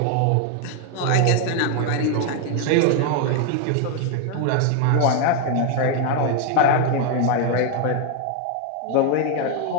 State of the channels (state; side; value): different; both; correlation 0.01